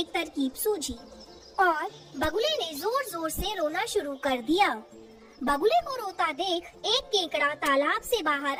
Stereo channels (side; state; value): both; identical; correlation 1.00